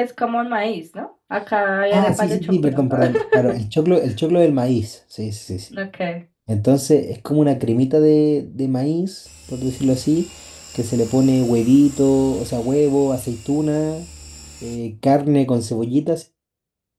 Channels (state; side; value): identical; both; correlation 1.00